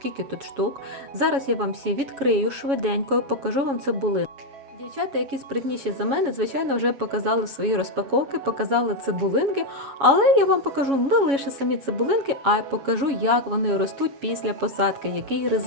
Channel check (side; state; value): left; late; 7.2 ms